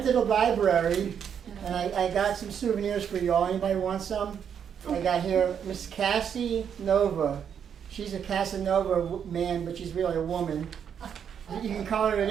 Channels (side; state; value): left; quieter; 8.0 dB